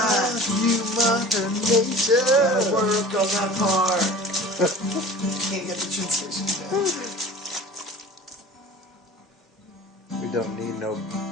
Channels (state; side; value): normal; both; correlation 0.41